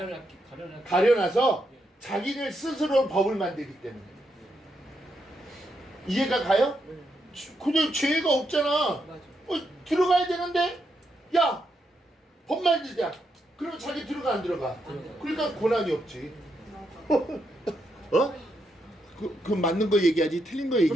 가려놔서 자기를 스스로 법을 만들기 때문에. 이해가 가요? 그냥 죄가 없잖아. 맞아. 들어가야 되는데, 야, 법 만들자. 그러면 자기 들어가 안 들어가? 그러니까 고난이 없지. 그 맞는 거 얘기하지 틀린 거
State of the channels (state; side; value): normal; both; correlation 0.81